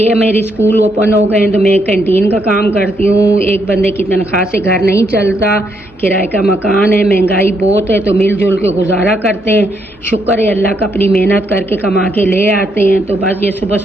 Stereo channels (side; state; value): both; normal; correlation 0.76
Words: मेरी स्कूल ओपन हो गए हैं तो मैं कैंटीन का काम करती हूँ। एक बंदे की तनख्वाह से घर नहीं चलता, किराए का मकान है, महंगाई बहुत है, तो मिलजुल के गुजारा करते हैं। शुक्र है अल्लाह का, अपनी मेहनत करके कमा के ले आते हैं। तो बस ये सुबह